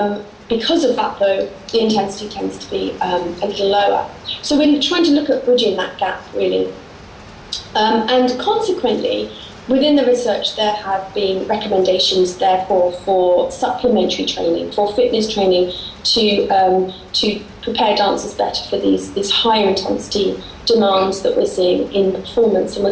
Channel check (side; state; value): both; identical; correlation 1.00